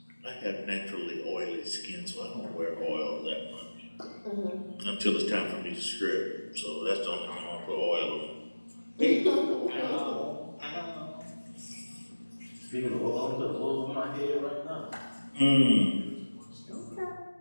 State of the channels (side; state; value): both; inverted; correlation -1.00